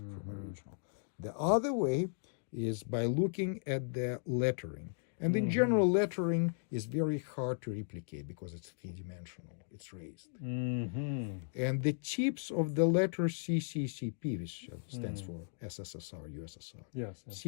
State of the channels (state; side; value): silent; right; digital silence